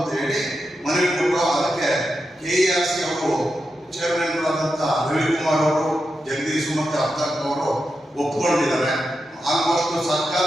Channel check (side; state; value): both; normal; correlation 0.88